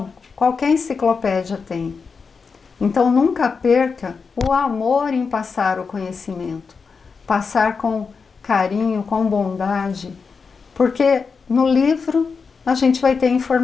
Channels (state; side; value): quieter; right; 5.2 dB